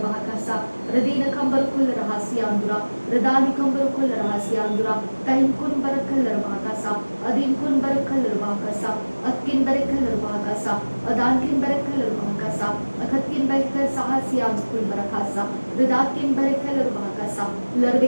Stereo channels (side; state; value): both; inverted; correlation -1.00